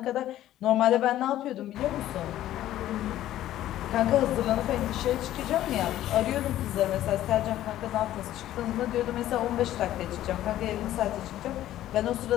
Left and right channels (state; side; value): quieter; right; 13.3 dB